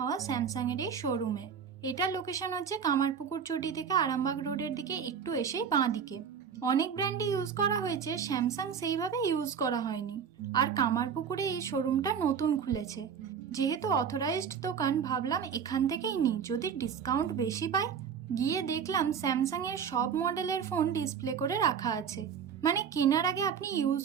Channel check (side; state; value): left; quieter; 7.2 dB